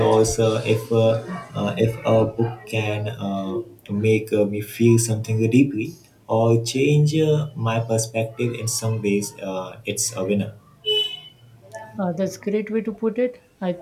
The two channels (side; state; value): both; identical; correlation 1.00